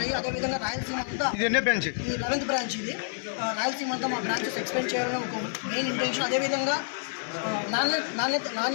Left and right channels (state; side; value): silent; right; digital silence